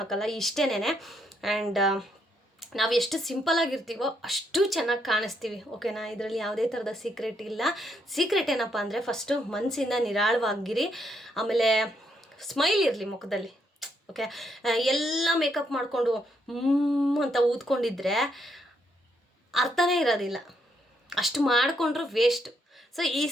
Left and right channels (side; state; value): both; normal; correlation 0.75